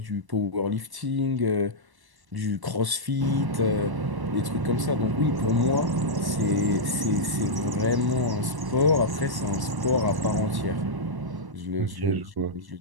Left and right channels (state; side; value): late; left; 1.1 ms